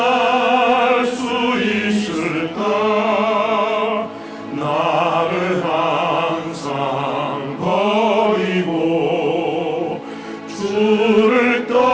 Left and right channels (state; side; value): identical; both; correlation 1.00